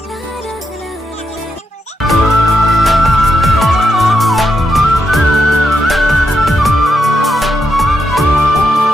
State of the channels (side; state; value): both; normal; correlation 0.82